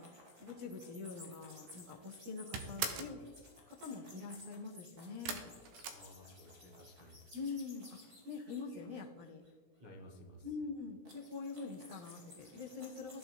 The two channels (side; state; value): left; late; 17 ms